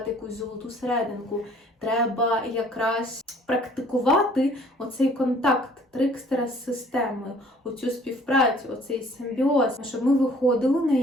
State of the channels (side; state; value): both; normal; correlation 0.56